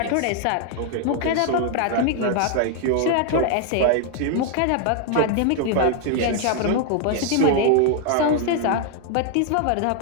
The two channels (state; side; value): different; both; correlation 0.00